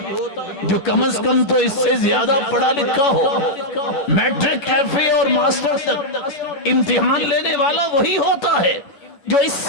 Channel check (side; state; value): right; late; 11 ms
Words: جو کم از کم تو اس سے زیادہ پڑھا لکھا ہو، میٹرک، ایف اے اور ماسٹر تک امتحان لینے والا وہی ہوتا ہے جو اس